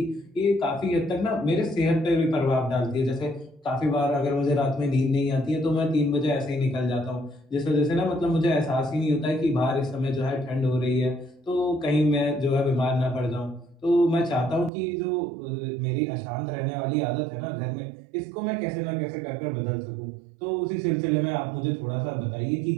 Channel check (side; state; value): left; drops out; at 14.7 s